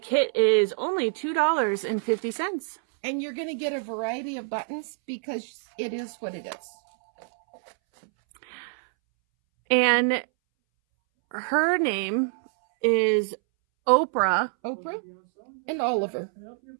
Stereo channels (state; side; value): silent; left; 61 dB below the other